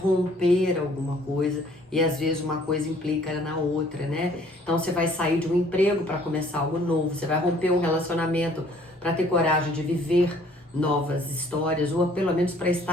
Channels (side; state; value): both; normal; correlation 0.58